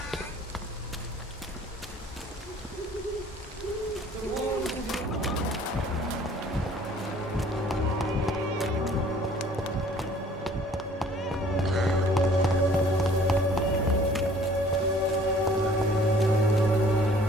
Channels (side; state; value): both; normal; correlation 0.55